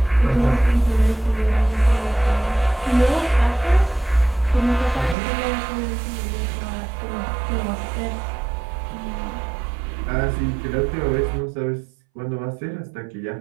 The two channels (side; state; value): left; drops out; at 5.2 s